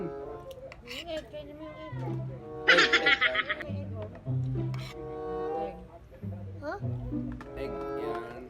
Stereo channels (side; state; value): both; identical; correlation 1.00